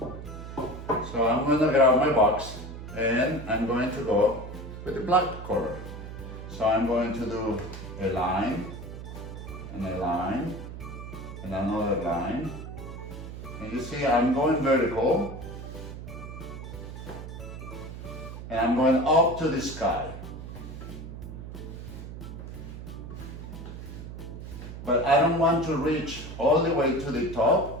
So I'm going to grab my box, and I'm going to go with the black color. So I'm going to do a line, and a line, and another line. And you see I'm going vertical, and I'm going up to the sky. But I don't want to reach all the way to the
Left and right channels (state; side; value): noise; right; hum, 10 dB below the sound